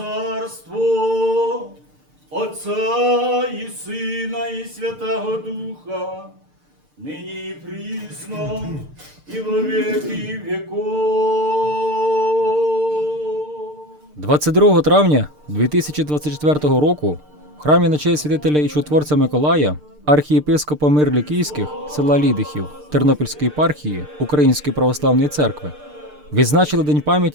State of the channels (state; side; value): late; left; 6.7 ms